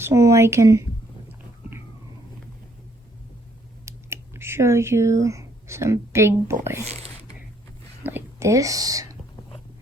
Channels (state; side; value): normal; both; correlation 0.67